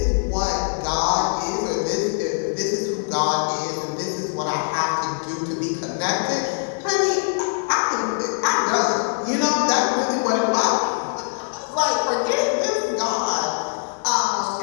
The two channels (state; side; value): silent; right; digital silence